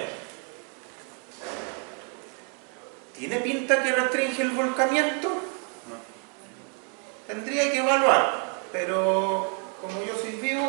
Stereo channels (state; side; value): quieter; left; 36.7 dB